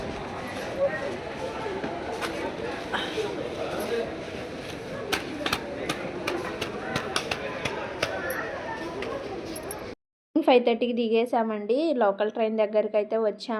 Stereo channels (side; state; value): both; identical; correlation 1.00